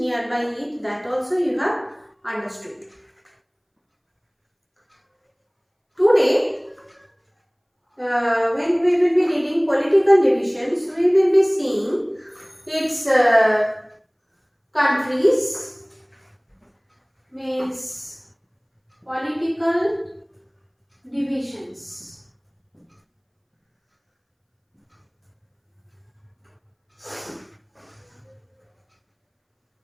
it, that also you have understood. Today, when we will be reading political divisions, we will be seeing its countries, means political divisions.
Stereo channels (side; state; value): both; identical; correlation 1.00